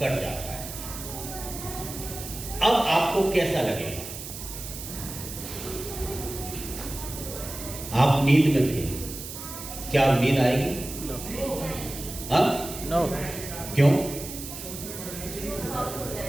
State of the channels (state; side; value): noise; right; hiss, 10 dB below the sound